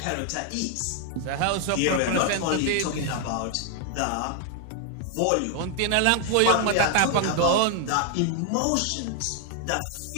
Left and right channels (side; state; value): both; different; correlation 0.00